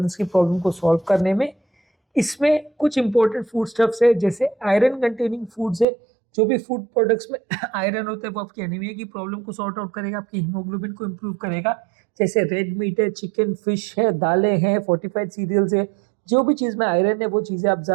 की प्रॉब्लम को सॉल्व करने में। इसमें कुछ इंपॉर्टेंट फूड स्टफ्स है, जैसे आयरन कंटेनिंग फूड्स है। जो भी फूड प्रोडक्ट्स में आयरन होता है वो आपकी एनीमिया की प्रॉब्लम को सॉर्ट आउट करेगा, आपकी हीमोग्लोबिन को इम्प्रूव करेगा। जैसे रेड मीट है, चिकन, फिश है, दालें हैं, फोर्टिफाइड सीरियल्स है, जो भी चीज़ में आयरन है वो चीज़ें आप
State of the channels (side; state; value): left; drops out; at 5.9 s